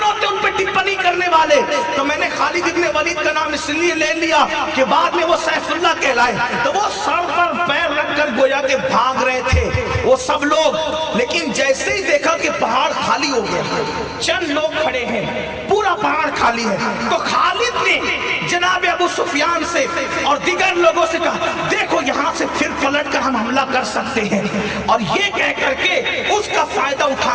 ہوتے ان پہ ٹپنی کرنے والے؟ تو میں نے خالد ابن ولید کا نام اس لیے لے لیا کہ بعد میں وہ سیف اللہ کہلائے. تو وہ سر پر پیر رکھ کر گویا کہ بھاگ رہے تھے وہ سب لوگ. لیکن جیسے ہی دیکھا کہ پہاڑ خالی ہو گیا چند لوگ کھڑے ہیں پورا پہاڑ خالی ہے تو خالد نے جناب ابو سفیان سے اور دیگر لوگوں سے کہا دیکھو یہاں سے پھر پلٹ کر ہم حملہ کر سکتے ہیں. اور یہ کہہ کر کے اس کا فائدہ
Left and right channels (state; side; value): identical; both; correlation 1.00